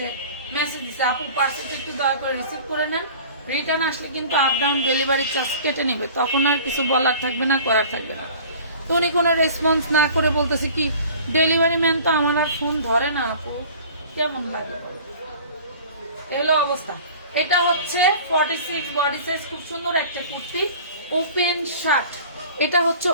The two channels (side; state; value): both; inverted; correlation -0.44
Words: মেসেজ দিছি, আপু পার্সেলটা একটু দয়া করে রিসিভ করে নেন, রিটার্ন আসলে কিন্তু আপ ডাউন ডেলিভারি চার্জ কেটে নিবে। তখন আর কিছু বলার থাকবে না, করার থাকবে না। তো উনি কোনো রেসপন্স না করে বলতেছে কি, ডেলিভারি ম্যান তো আমার আর ফোন ধরে না আপু, কেমন লাগে? এগুলো অবস্থা। এটা হচ্ছে 46 বডি সাইজ, খুব সুন্দর একটা কুর্তি, ওপেন শার্ট। এটা হচ্ছে